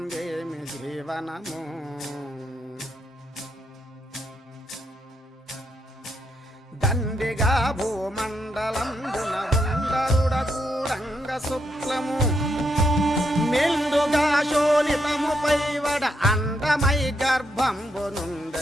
ఏమి జీవనము దండిగా భూమండలంబున ఉండరుడ కూడంగ శుక్లము మెండుగా శోణితము పైవడ అండమై గర్భంబు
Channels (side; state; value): both; normal; correlation 0.79